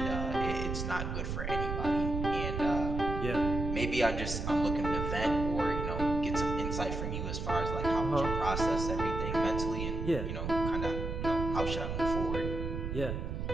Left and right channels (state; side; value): noise; right; rumble, 3 dB below the sound